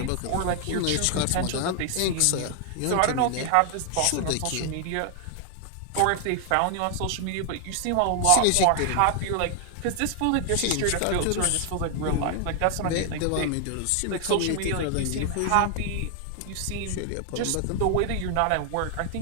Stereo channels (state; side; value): different; both; correlation 0.00